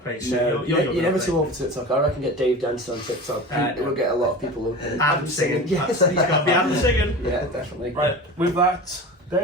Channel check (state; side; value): normal; both; correlation 0.32